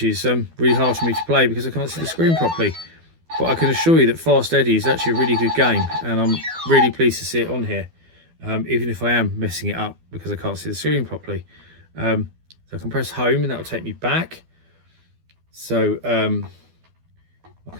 is really hard for me to play because I can't see the screen properly. But I can assure you that Fast Eddie is actually a really good game, and I'm really pleased to see it on here, even if I am messing it up because I can't see the screen properly. So I can press home and that will take me back. So I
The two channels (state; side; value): late; left; 12 ms